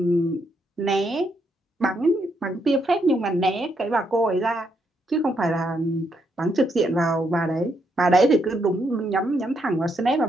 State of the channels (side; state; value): both; normal; correlation 0.77